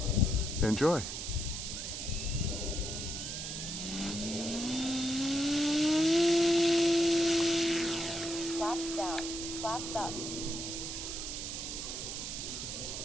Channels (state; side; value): noise; right; hiss, 5 dB below the sound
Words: enjoy. Flaps down, flaps up.